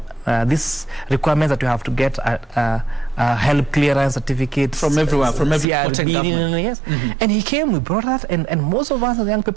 this requirements that you have to get health clearance certificate from everywhere, from every government. And he came, we brought that, and most of us as young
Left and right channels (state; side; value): drops out; left; at 5.7 s